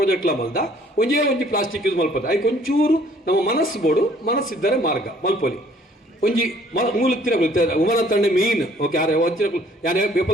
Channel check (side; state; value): both; normal; correlation 0.59